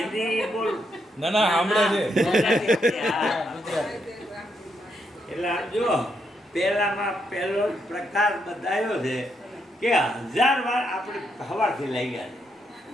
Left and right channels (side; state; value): both; normal; correlation 0.79